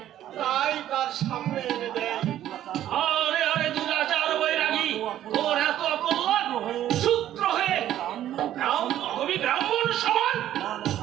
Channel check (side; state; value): left; quieter; 12.1 dB